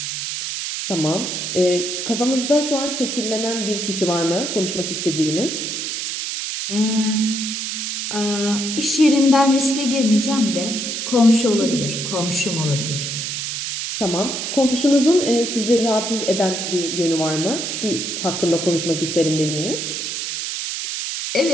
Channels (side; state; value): right; noise; hiss, 3 dB below the sound